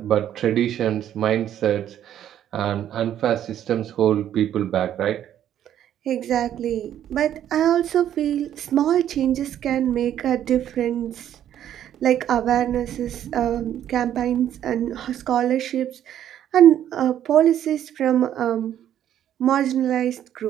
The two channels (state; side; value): quieter; left; 10.8 dB